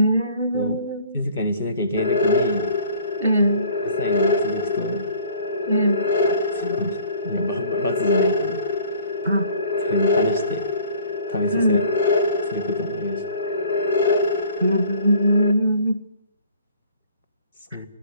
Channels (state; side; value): inverted; both; correlation -0.52